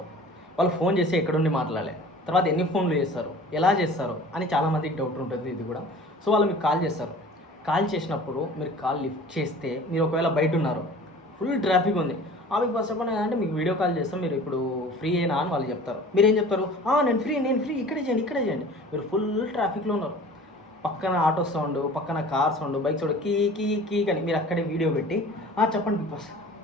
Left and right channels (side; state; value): both; normal; correlation 0.44